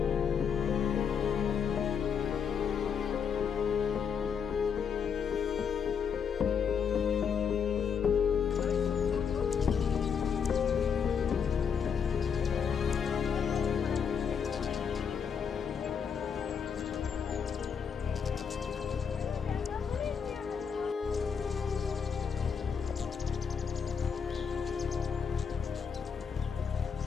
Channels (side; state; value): right; quieter; 6.8 dB